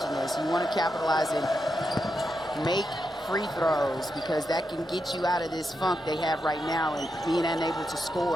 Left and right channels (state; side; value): normal; both; correlation 0.85